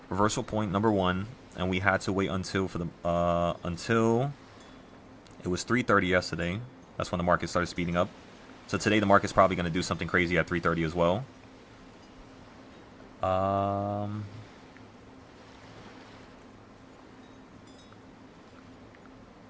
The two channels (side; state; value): both; identical; correlation 1.00